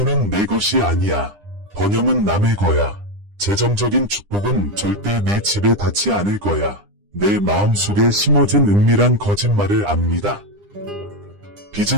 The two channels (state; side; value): late; left; 9.9 ms